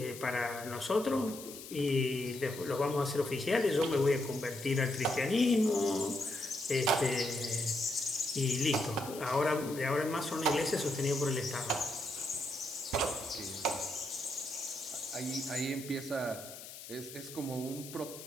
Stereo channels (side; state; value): left; noise; hiss, 13 dB below the sound